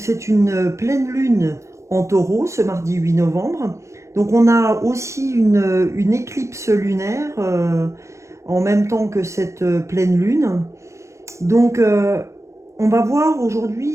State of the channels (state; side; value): late; left; 0.14 ms